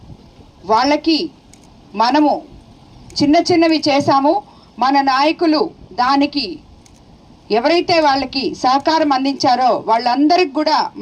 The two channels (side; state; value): both; identical; correlation 1.00